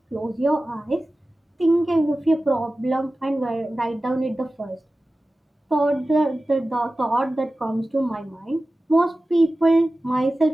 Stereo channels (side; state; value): both; normal; correlation 0.96